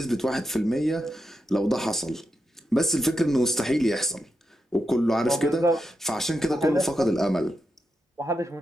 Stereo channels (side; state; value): both; normal; correlation 0.86